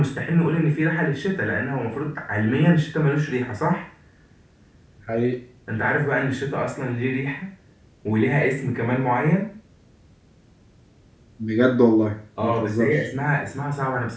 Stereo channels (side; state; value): both; identical; correlation 1.00